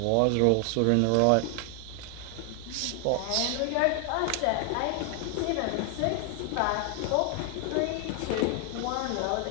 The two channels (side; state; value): both; different; correlation 0.00